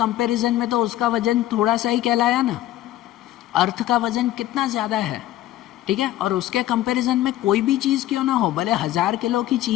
में तो उसका वजन थोड़ा सा ही कहलाया ना। अर्थ का वजन कितना ज़्यादा है, ठीक है? और उसके कंपैरिजन में कोई भी चीज़ क्यों ना हो, भले 1000 किलो की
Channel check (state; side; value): quieter; right; 14.2 dB